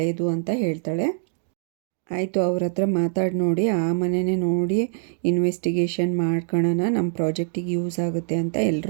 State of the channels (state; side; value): silent; left; digital silence